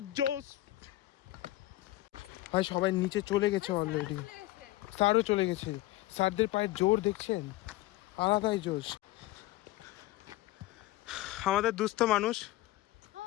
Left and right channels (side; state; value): right; quieter; 16.9 dB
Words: জোস। ভাই সবাই নিচে চলে গেছে অলরেডি, স্যারও চলে গেছে। স্যারদের পায়ের জোর দেখছেন, আলাদাই জোশ। আমাদের দুস্থ মানুষ